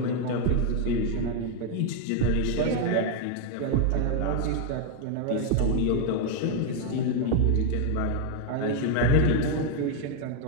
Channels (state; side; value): different; both; correlation 0.01